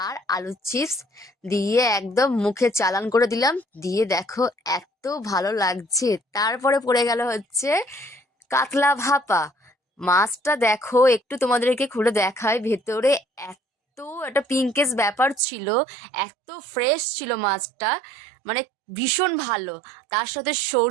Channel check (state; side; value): drops out; left; at 15.4 s